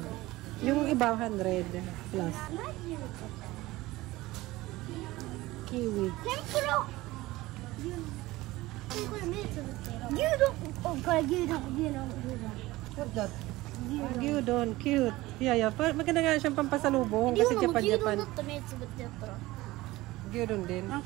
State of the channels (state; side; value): quieter; left; 18.8 dB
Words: Yung iba, 100 plus. Kiwi. What's that? Gyudon. Cute. Yeah. Maganda nga siyang pampasalubong kasi Japan. Gyudon din.